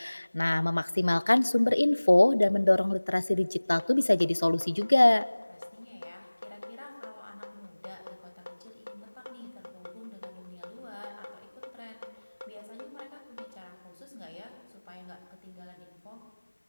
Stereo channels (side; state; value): both; inverted; correlation -1.00